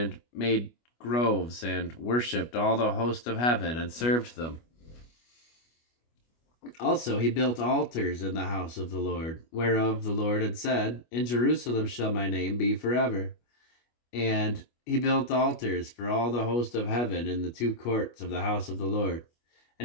made groves, and worshipped all the host of heaven, and served them. Also he built altars in the house of the Lord, whereof the Lord had said, In Jerusalem shall my name be forever. And he built altars for all the host of heaven in the two courts of the house of the Lord.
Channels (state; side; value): late; right; 25 ms